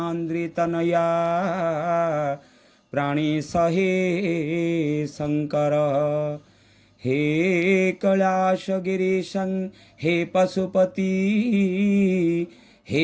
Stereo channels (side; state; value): both; identical; correlation 1.00